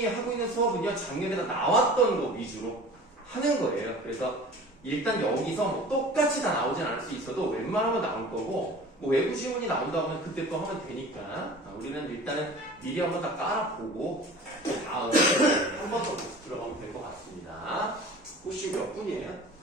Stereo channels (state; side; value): normal; both; correlation 0.41